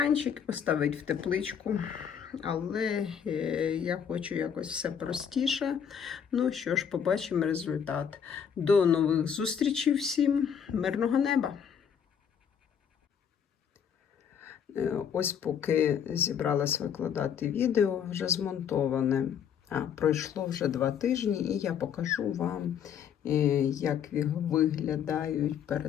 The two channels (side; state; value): right; quieter; 7.9 dB